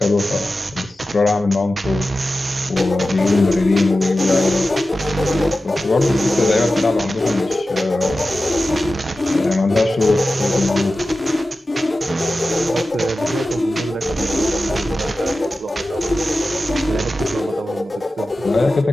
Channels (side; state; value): both; normal; correlation 0.94